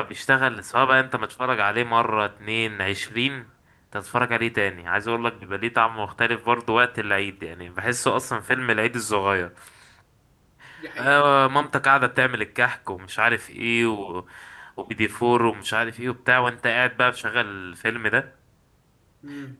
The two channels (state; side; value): identical; both; correlation 1.00